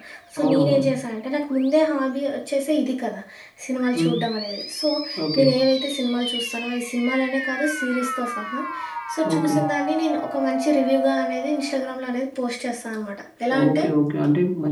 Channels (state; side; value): identical; both; correlation 1.00